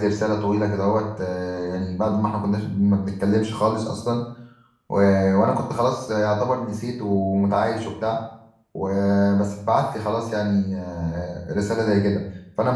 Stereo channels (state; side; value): identical; both; correlation 1.00